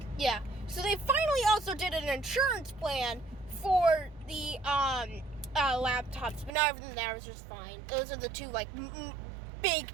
Yeah. So they finally also did an insurance plan for the laptops, but not everything there was just fine. Those are the 2 big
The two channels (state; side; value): drops out; left; at 6.5 s